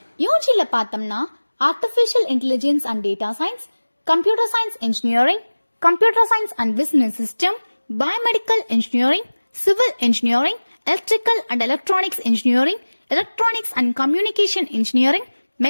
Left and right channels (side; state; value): both; inverted; correlation -1.00